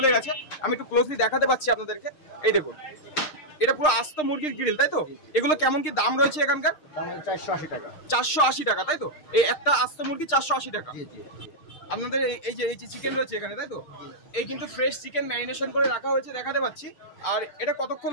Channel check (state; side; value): late; right; 6.5 ms